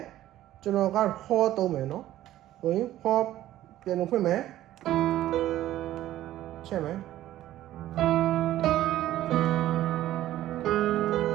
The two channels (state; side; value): quieter; left; 13.8 dB